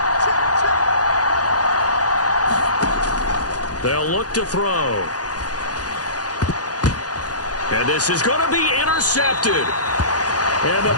They'll look to throw. And this is going to be intercepted. And the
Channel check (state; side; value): late; right; 0.68 ms